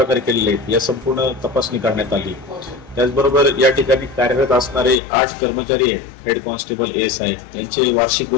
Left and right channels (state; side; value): drops out; right; at 5.0 s